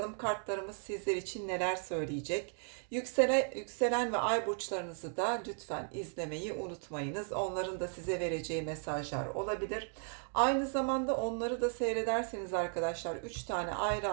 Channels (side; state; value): left; silent; 54 dB below the other